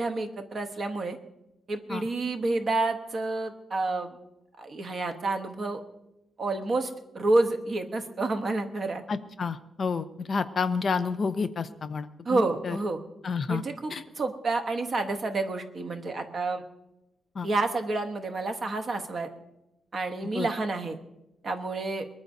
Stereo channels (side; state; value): both; normal; correlation 0.85